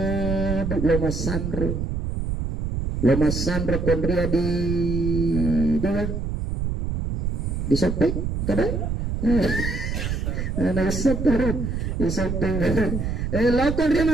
loma sandro. Loma sandro kondria di sopeng kadang nah sopeng di sopeng lakon dia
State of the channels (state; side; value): noise; right; rumble, 2 dB below the sound